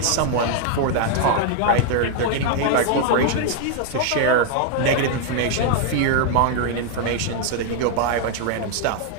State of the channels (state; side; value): different; both; correlation 0.00